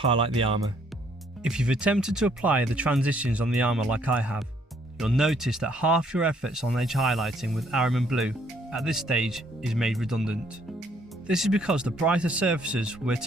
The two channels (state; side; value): normal; both; correlation 0.66